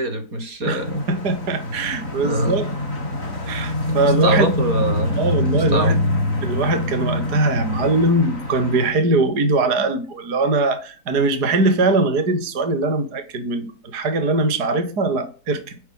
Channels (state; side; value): late; left; 4.7 ms